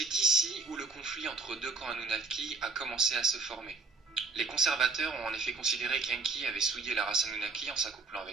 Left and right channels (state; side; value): quieter; left; 3.9 dB